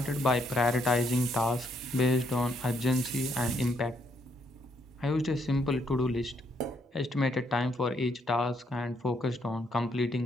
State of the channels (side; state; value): both; normal; correlation 0.73